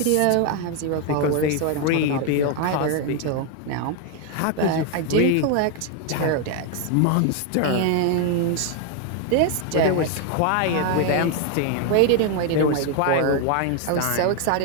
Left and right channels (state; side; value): different; both; correlation 0.01